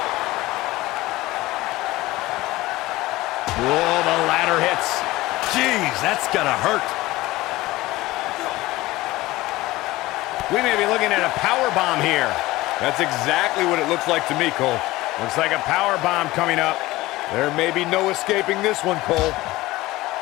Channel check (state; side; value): quieter; right; 18.6 dB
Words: Whoa, the ladder hits. Jeez, that's gotta hurt. We may be looking at a power bomb here. That's exactly what it looks like to me, Cole. Looks like a power bomb coming up. There may be no escaping this one, Cole.